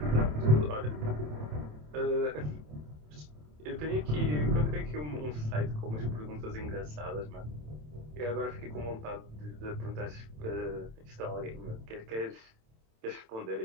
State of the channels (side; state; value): left; late; 27 ms